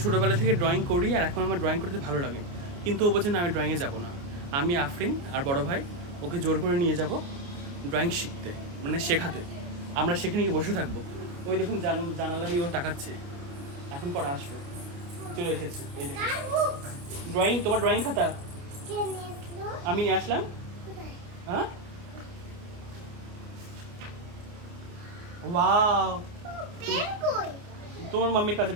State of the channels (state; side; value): late; left; 29 ms